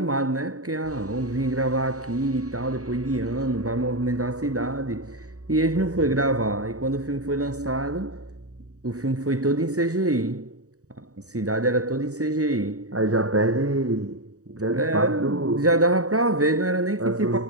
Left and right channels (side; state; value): left; late; 0.66 ms